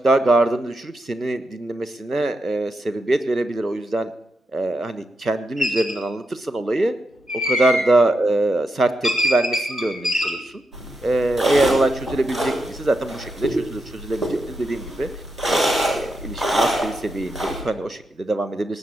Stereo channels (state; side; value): normal; both; correlation 0.85